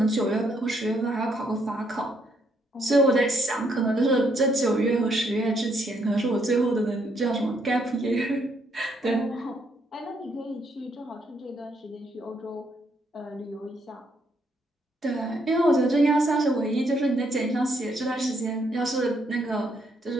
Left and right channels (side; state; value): both; normal; correlation 0.73